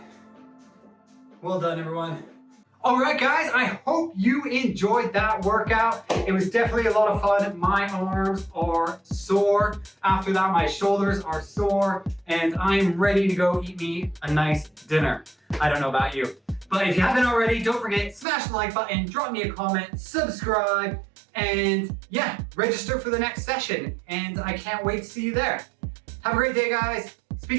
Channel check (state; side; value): drops out; left; at 18.2 s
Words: Well done, everyone. Alright guys, I hope you enjoyed that workout. It was definitely a lot of fun. My arms are sore. After that, my shoulders are sore, and I'm ready to go eat me a nice dinner. I don't know about you. But if you haven't already, don't forget, smash the like button, drop me a comment, subscribe, and yeah, register for the next session. And I can't wait to see you there. Have a great day, guys.